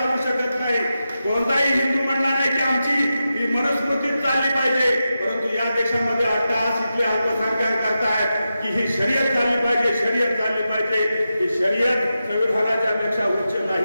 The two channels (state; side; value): inverted; both; correlation -0.90